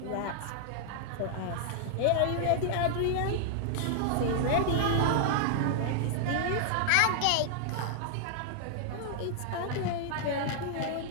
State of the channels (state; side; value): different; both; correlation -0.01